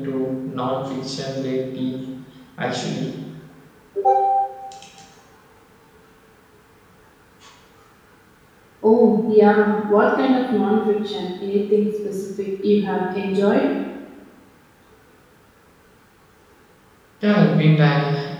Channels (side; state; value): both; identical; correlation 1.00